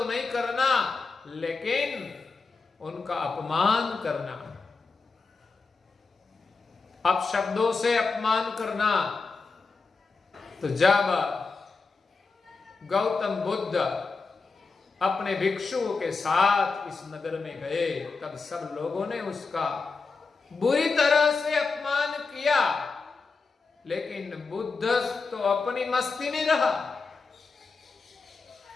नहीं करना, लेकिन उनका अपमान करना, अपशब्दों से अपमान करना। तो जब गौतम बुद्ध अपने भिक्षुओं के साथ इस नगर में गए, तब सब लोगों ने उसका बुरी तरह से अपमान किया, लेकिन बुद्ध तो अपनी मस्ती में रहा।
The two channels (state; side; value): quieter; right; 4.4 dB